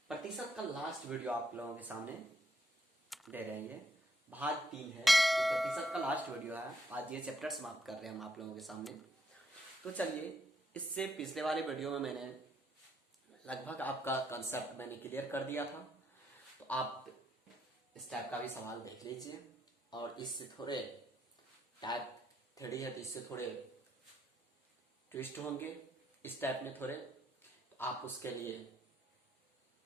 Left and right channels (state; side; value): normal; both; correlation 0.74